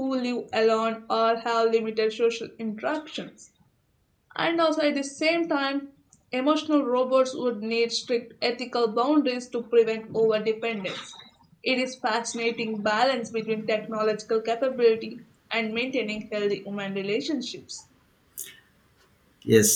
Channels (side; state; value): both; identical; correlation 1.00